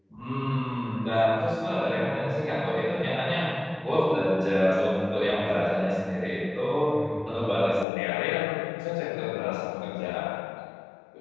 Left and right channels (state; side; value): drops out; right; at 7.9 s